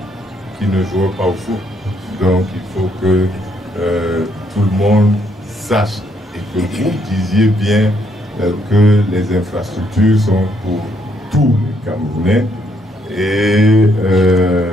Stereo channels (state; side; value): normal; both; correlation 0.71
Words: qui ne jouait pas au foot. Donc il faut que tout le monde sache et que vous disiez bien que les infrastructures sont pour tous les Camerounais. Et